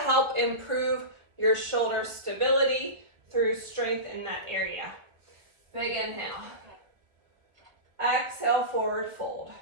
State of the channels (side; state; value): left; late; 1.3 ms